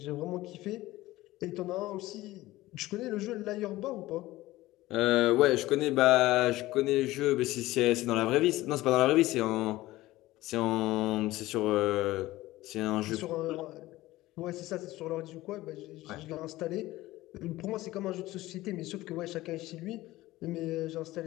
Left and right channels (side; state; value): right; quieter; 17.5 dB